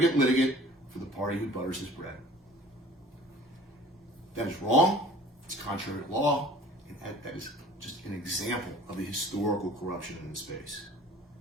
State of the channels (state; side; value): normal; both; correlation 0.48